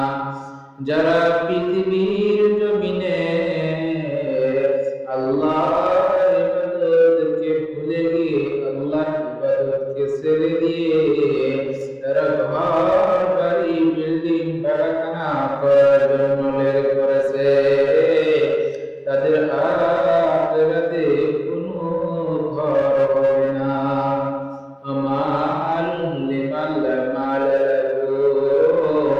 যারা পৃথিবীর জমিনে আল্লাহর ইবাদতকে ভুলে গিয়ে আল্লাহর ইবাদতকে ছেড়ে দিয়ে তারা ঘর বাড়ি বিল্ডিং কারখানা করার জন্য লেগে পড়েছে তাদের আখিরাতে কোনো ঘর হবে না। আমালুন লিমান লা মাল লাহু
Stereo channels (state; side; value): identical; both; correlation 1.00